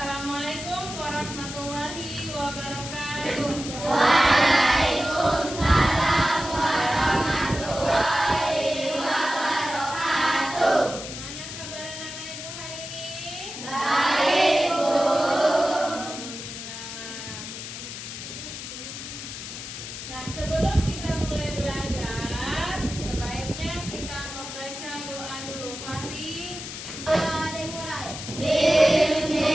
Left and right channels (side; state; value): left; noise; hiss, 9 dB below the sound